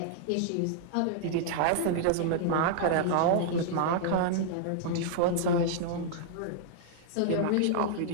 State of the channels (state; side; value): different; both; correlation -0.01